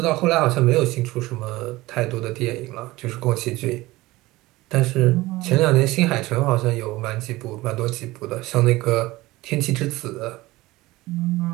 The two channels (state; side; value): quieter; left; 19.2 dB